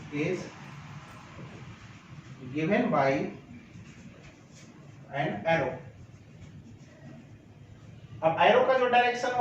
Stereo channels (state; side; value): identical; both; correlation 1.00